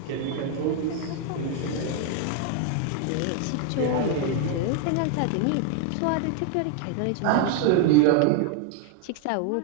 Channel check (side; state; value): both; different; correlation 0.00